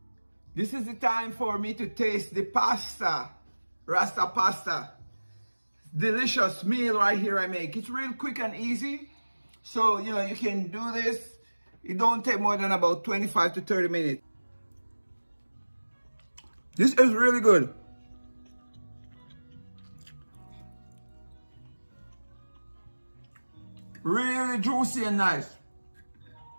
this is the time for me to taste the pasta, Rasta Pasta. Delicious meal right here I make. It's real quick and easy. So, you know, you can do this. It don't take more than about 25 to 30 minutes. This is really good. Really juicy and nice.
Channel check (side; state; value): both; inverted; correlation -1.00